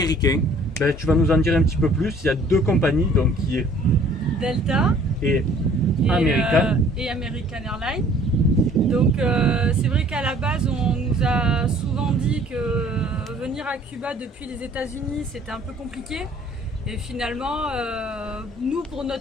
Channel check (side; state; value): both; normal; correlation 0.55